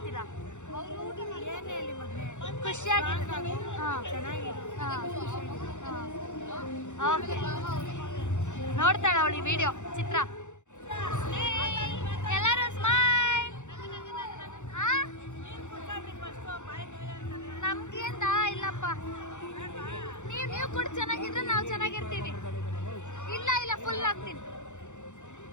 ಖುಷಿಯಾಗಿ. ಓಕೆ, ನೋಡ್ತಾಳ ಅವಳಿ ವಿಡಿಯೋ ಚಿತ್ರ. ಎಲ್ಲರೂ ಸ್ಮೈಲ್. ನಮ್ಗೇಂದ ಇಲ್ಲಪ್ಪ. ನೀವು ಕೂಡ ಚೆನ್ನಾಗಿದ್ರೆ ನಾವು ಚೆನ್ನಾಗಿರ್ತೀವಿ. ಇಲ್ಲ ಇಲ್ಲ, ಫುಲ್ ಆಗ್ತೀನಿ.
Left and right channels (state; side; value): late; right; 0.84 ms